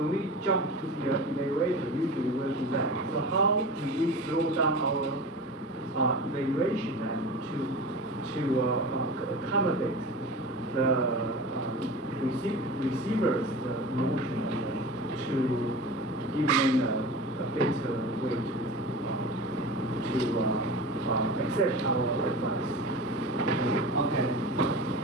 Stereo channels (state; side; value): normal; both; correlation 0.33